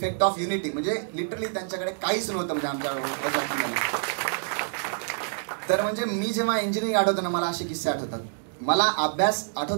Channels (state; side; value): silent; left; digital silence